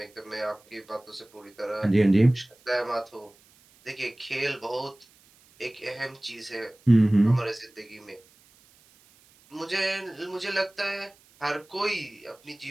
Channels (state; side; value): noise; right; hiss, 29 dB below the sound